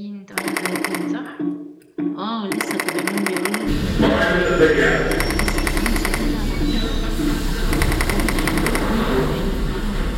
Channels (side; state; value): both; identical; correlation 1.00